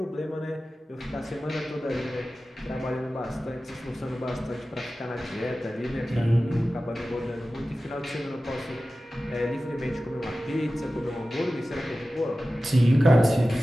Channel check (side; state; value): both; normal; correlation 0.95